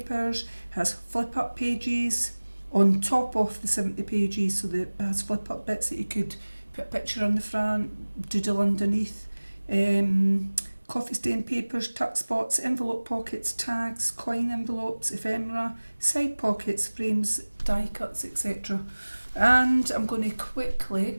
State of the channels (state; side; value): inverted; both; correlation -1.00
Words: has flip up pages on top of the 70 pages, so it has flip up bits that you could put a picture on the front, doodle underneath. Coffee stain papers, tuck spots, envelope pockets, tags, coin envelopes, ephemera, side pockets, frames, die cuts, etc. And I'm going to quickly